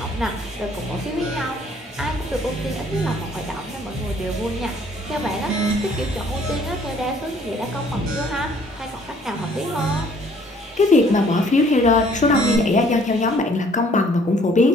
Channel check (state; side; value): normal; both; correlation 0.60